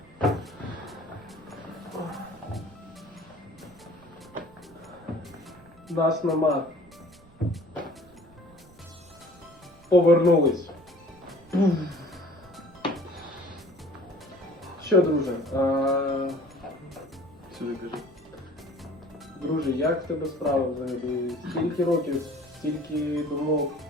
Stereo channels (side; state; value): right; noise; rumble, 26 dB below the sound